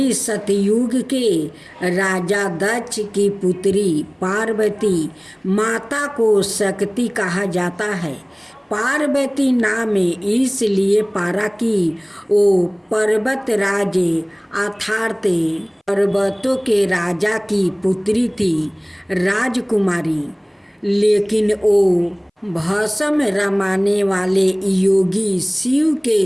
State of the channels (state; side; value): identical; both; correlation 1.00